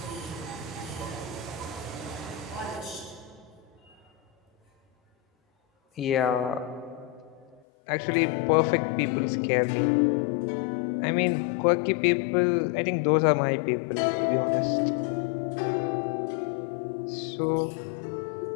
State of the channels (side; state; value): right; drops out; at 7.6 s